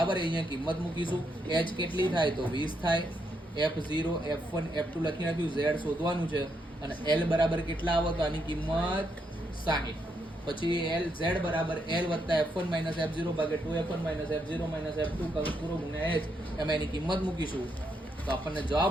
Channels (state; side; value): normal; both; correlation 0.78